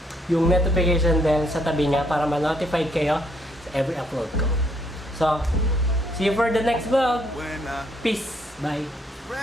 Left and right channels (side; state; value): both; normal; correlation 0.69